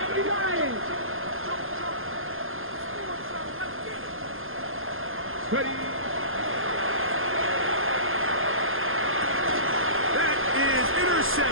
Lions. Ready. That is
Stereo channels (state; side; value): late; left; 0.60 ms